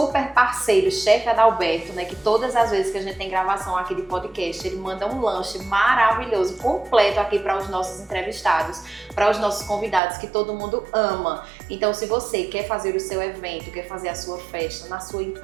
parceiro, chefe Adalberto, que todas as vezes que a gente tem gravação aqui de podcast, ele manda um lanche maravilhoso, completo aqui para os nossos entrevistados, para os nossos convidados que todo mundo ama. Então, se você quer fazer o seu evento, quer fazer a sua festa na sua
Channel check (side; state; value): left; drops out; at 10.0 s